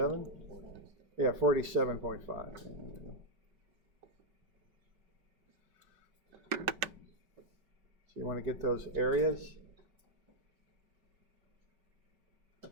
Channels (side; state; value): left; late; 5.2 ms